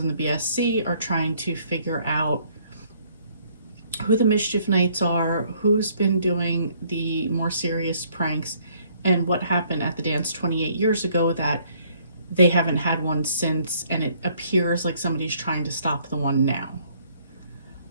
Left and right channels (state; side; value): inverted; both; correlation -0.63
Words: the BSC are trying to figure out who the Mischief Knights are, who's been doing the more serious pranks, and what happened at the dance 28 years ago that they haven't had one since, and it appears like somebody's trying to stop the one now.